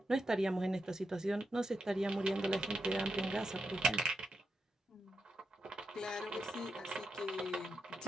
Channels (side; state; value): both; normal; correlation 0.86